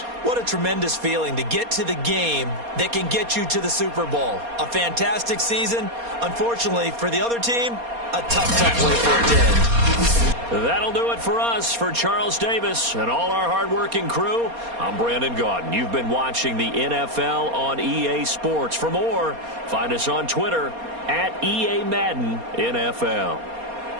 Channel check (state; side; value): late; left; 4.2 ms